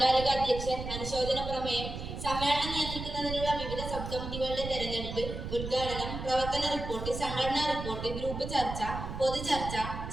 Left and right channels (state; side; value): noise; right; rumble, 7 dB below the sound